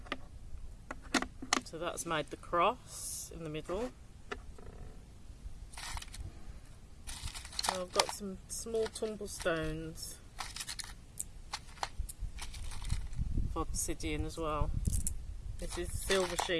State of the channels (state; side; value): identical; both; correlation 1.00